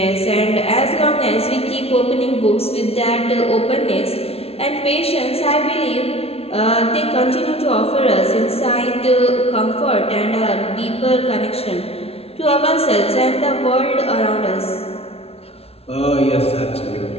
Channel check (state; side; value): late; right; 0.29 ms